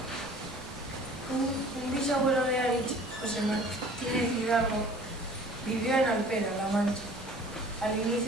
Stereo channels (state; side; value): normal; both; correlation 0.48